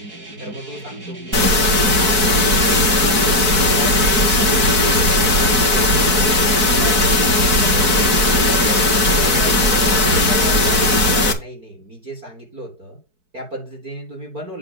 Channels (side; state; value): left; late; 4.6 ms